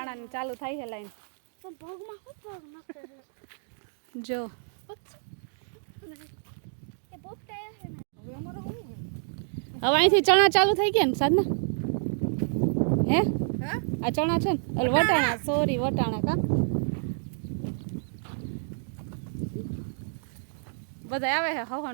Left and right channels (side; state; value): left; silent; digital silence